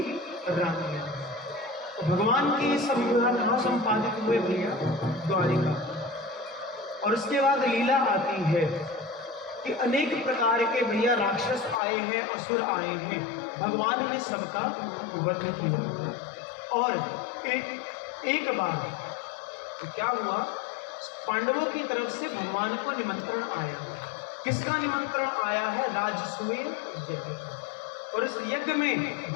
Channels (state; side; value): drops out; right; at 11.8 s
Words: रानियां हैं। तो भगवान के ये सब विवाह कहाँ संपादित हुए भैया? द्वारिका। और उसके बाद लीला आती है कि अनेक प्रकार के भैया राक्षस आए हैं, असुर आए हैं, भगवान ने सबका वध किया। और एक बार तो क्या हुआ, पांडवों की तरफ से भगवान को निमंत्रण आया। किसका निमंत्रण आया है? राजसूय यज्ञ। और इस यज्ञ में